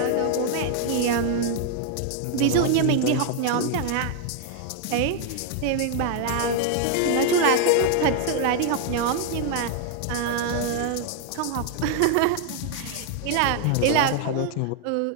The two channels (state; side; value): different; both; correlation 0.00